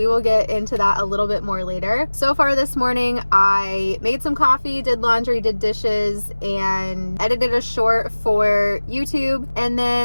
will get into that a little bit more later. So far this morning, I made some coffee, did laundry, did dishes, and edited a short for YouTube. And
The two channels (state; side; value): inverted; both; correlation -1.00